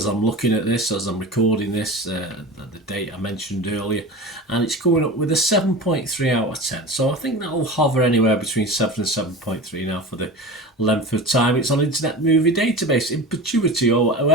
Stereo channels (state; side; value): normal; both; correlation 0.32